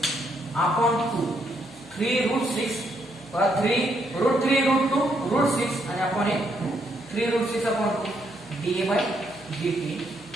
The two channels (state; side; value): noise; left; hum, 28 dB below the sound